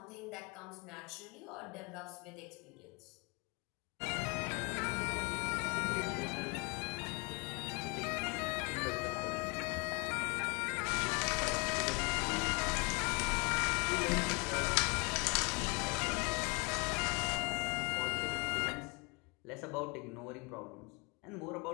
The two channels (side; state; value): right; quieter; 30.1 dB